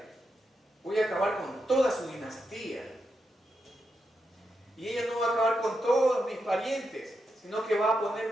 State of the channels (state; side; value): normal; both; correlation 0.85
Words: voy a acabar con toda su dinastía. Y ella no va a acabar con todos mis parientes, sino que va a poner